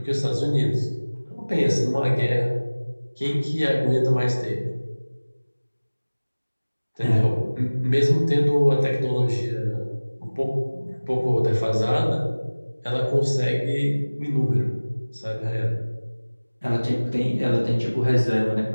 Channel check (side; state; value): both; inverted; correlation -1.00